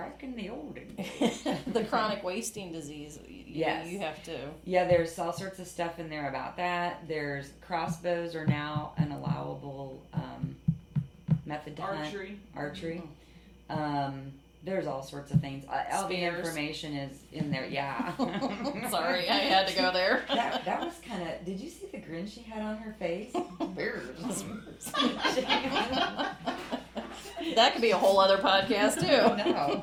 in the olden days. the chronic wasting disease. Yes. You have to. Yeah, there's all sorts of stuff in there about that. There's crossbows are now an allowable method to hunt. Archery. There's all sorts of things. All the Spears. information is in there. Yeah. Sorry, I had to go there. That was kind of. Did you see the grin she had on her face? That could be a whole other podcast too. No.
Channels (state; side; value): identical; both; correlation 1.00